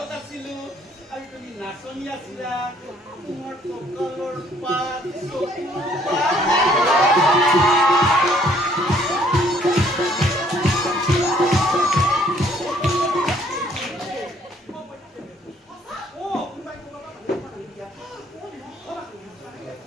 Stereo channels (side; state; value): both; normal; correlation 0.63